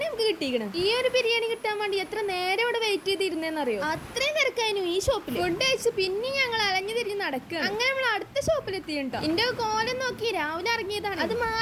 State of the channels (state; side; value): identical; both; correlation 1.00